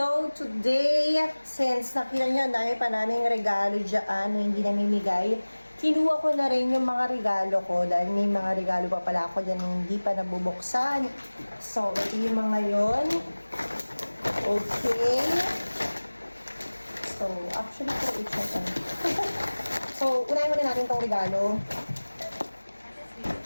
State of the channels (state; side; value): inverted; both; correlation -1.00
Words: today, since nakita nyo na pa naming regalo dyan na hindi namimigay, kinuha ko na rin yung mga regalo ko dahil may mga regalo pa pala ako dyan na hindi pa nabubuksan. So, ito yung mga yun. Okay. So, actually, ito it's So, unahin muna natin itong regalo